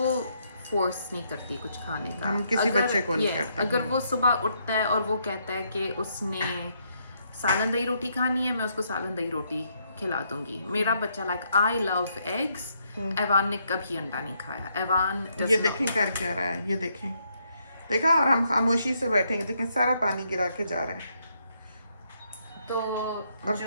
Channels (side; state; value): both; inverted; correlation -0.74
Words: फोर्स नहीं करती कुछ खाने का. हम किसी बच्चे को नहीं करते. अगर वो सुबह उठता है और वो कहता है कि उसने सालन दही रोटी खानी है, मैं उसको सालन दही रोटी खिला दूंगी. मेरा बच्चा like I love eggs. Evan ने कभी अंडा नहीं खाया. एवान ये देखें कर क्या रहा है, ये देखें, देखा. और हम खामोशी से बैठेंगे, देखें सारा पानी गिरा के जा रहा है. तो और